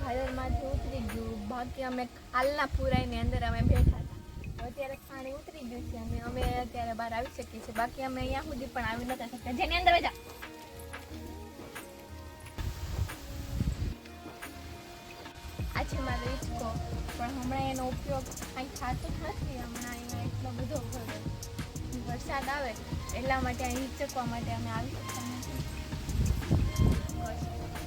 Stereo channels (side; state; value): both; identical; correlation 1.00